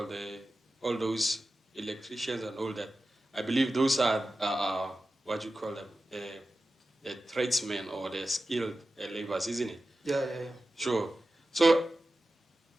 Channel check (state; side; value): normal; both; correlation 0.93